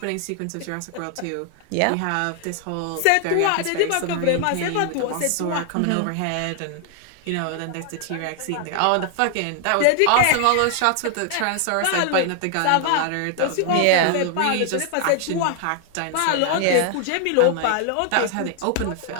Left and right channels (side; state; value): both; different; correlation 0.00